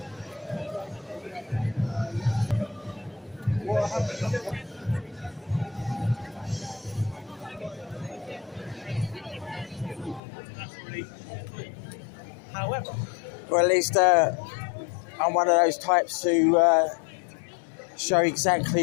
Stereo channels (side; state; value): right; drops out; at 10.2 s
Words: However, or at least I'm one of those types who show